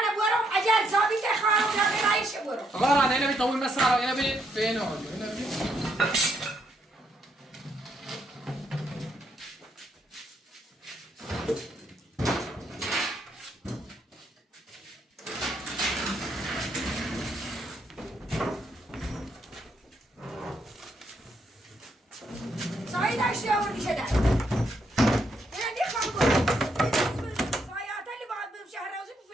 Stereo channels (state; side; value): normal; both; correlation 0.75